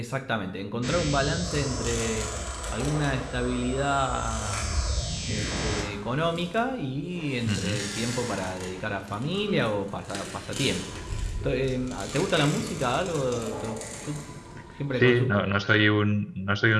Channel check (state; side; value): identical; both; correlation 1.00